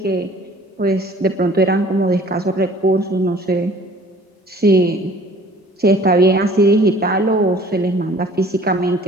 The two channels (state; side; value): normal; both; correlation 0.51